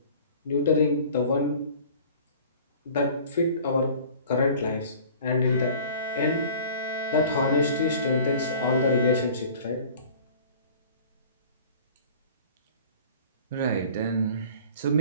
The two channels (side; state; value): both; inverted; correlation -0.46